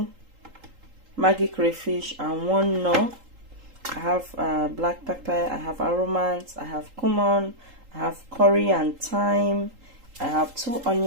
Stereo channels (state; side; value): late; left; 3.8 ms